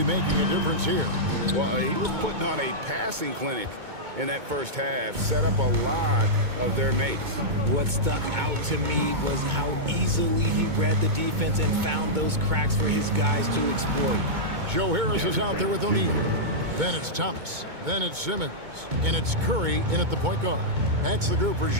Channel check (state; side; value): late; left; 2.2 ms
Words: making a difference here. Well, he was putting on a passing clinic in that first half, set up a lot of their mates. What stuck out to me was how easily he read the defense and found those cracks for his guys to exploit. Joe Harris is out there with O'Neal. Then it's Thomas. Then it's Simmons. And it's Curry in at the point guard. That's the group for